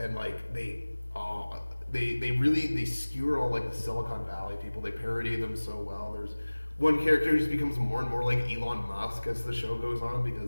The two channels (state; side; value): inverted; both; correlation -1.00